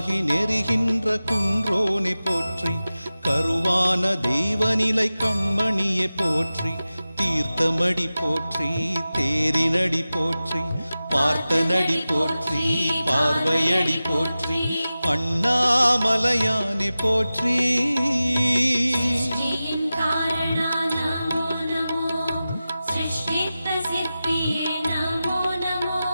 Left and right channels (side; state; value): both; inverted; correlation -0.95